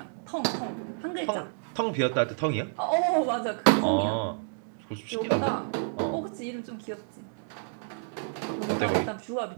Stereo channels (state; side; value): silent; left; digital silence